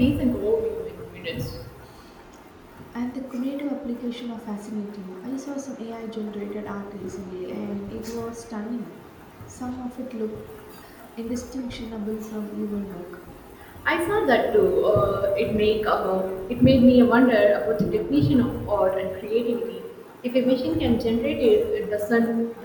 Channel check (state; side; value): identical; both; correlation 1.00